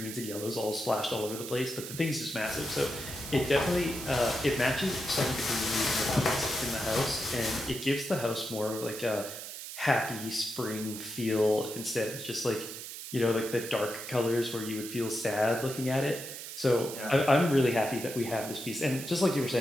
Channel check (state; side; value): noise; right; hiss, 9 dB below the sound